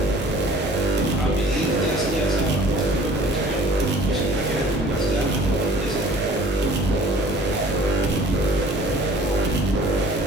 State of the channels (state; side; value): normal; both; correlation 0.50